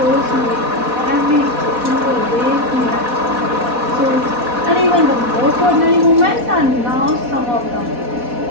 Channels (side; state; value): left; late; 4.1 ms